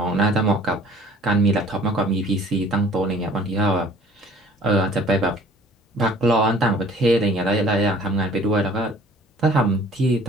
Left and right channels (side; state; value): both; normal; correlation 0.52